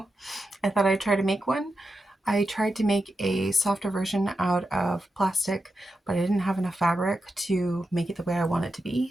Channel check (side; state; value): both; normal; correlation 0.89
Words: I thought I'd try to make one. I tried to make a softer version out of plastic, but I didn't have enough fabric to make it the way I want it to be.